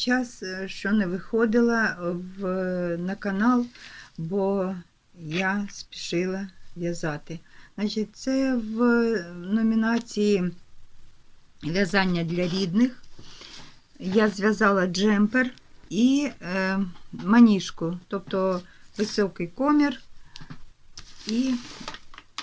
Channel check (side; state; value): both; identical; correlation 1.00